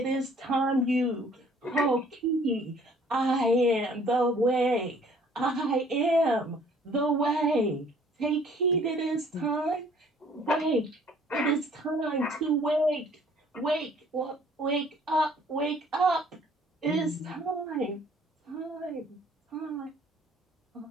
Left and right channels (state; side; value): normal; both; correlation 0.57